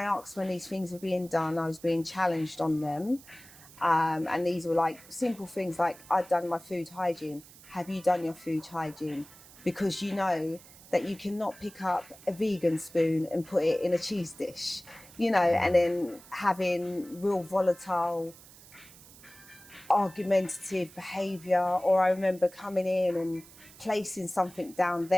asked when these things were being done, I was being challenged on them. And these were like simple things like, I'd done my food hygiene. Have you done your food hygiene? Because you know that you cannot pick up a vegan spoon and put it in a cheese dish, and then having real volatile, argumentative behaviour. Or I remember coming in and placing something down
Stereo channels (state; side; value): noise; right; hiss, 21 dB below the sound